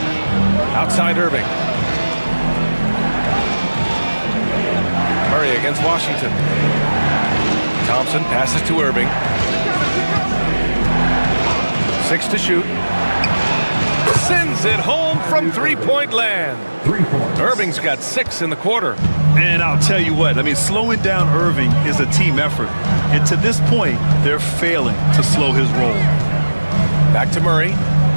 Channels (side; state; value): both; inverted; correlation -1.00